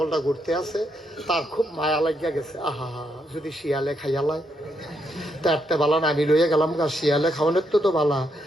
ঘুরতে আছে, তার খুব মায়া লাগিয়া গেছে। আহা, যদি শিয়ালে খাইয়ালায় তারতে বালা না, আমি লইয়া গেলাম গা, শিয়ালে খাওয়ানোর তো বালা।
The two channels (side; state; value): both; normal; correlation 0.78